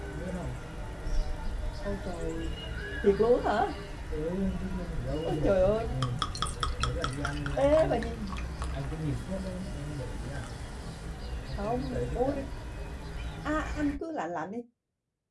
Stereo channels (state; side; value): identical; both; correlation 1.00